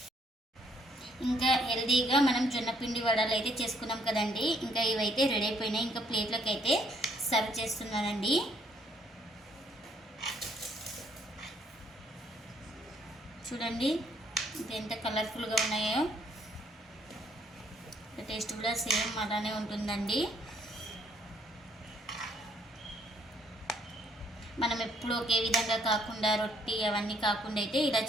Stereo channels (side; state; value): both; normal; correlation 0.67